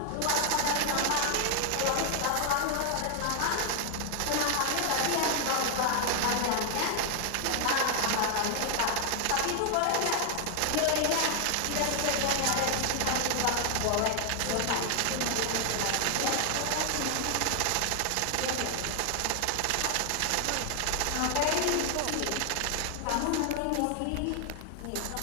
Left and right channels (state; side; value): different; both; correlation 0.00